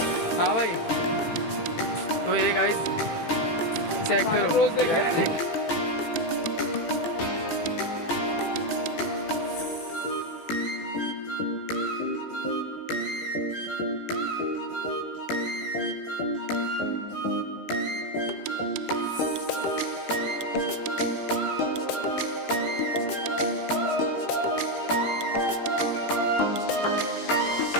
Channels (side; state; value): right; late; 18 ms